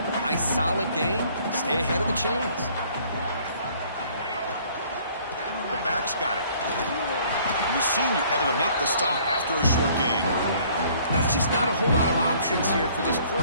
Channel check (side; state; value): both; inverted; correlation -0.58